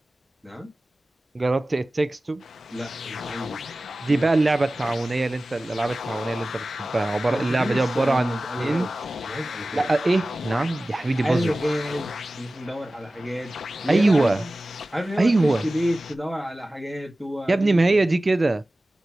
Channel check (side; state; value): both; normal; correlation 0.96